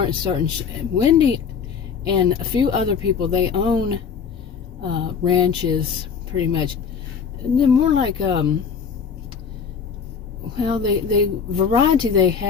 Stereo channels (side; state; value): right; quieter; 6.4 dB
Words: certain. Wendy and a few other people, they own ranches pretty much, and they're more like well, the variety they